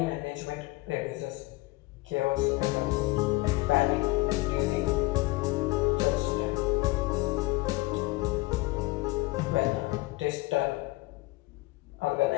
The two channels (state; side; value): quieter; right; 22.0 dB